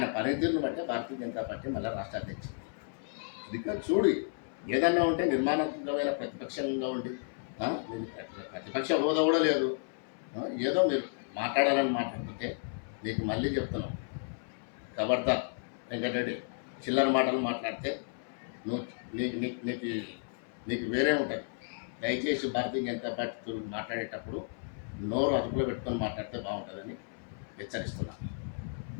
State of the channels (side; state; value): right; silent; 56 dB below the other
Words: పనితీరును బట్టి భారతీయ జనతా పార్టీ మళ్ళీ రాష్ట్ర అధ్యక్షుడు. ఇది చూడు, ఏదన్నా ఉంటే నిర్మాణాత్మకమైన ప్రతిపక్షంగా ఉండి ప్రతిపక్ష హోదా కూడా లేదు, ఏదో మీరు మాట్లాడాలని మాట్లాడుతుంటే నీకు మళ్ళీ చెప్తున్నాం, ఖబర్దార్ వెంకటరెడ్డి. చిల్లర మాటలు మాట్లాడితే నీకు వేరే ఉంటుంది. దయచేసి భారతీయ జనతా పార్టీతో మాట్లాడేటప్పుడు నోరు అదుపులో పెట్టుకొని మాట్లాడితే బాగుంటుందని హెచ్చరిస్తున్నాను.